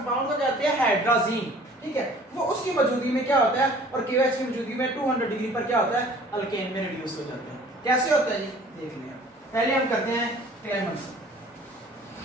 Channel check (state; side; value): normal; both; correlation 0.51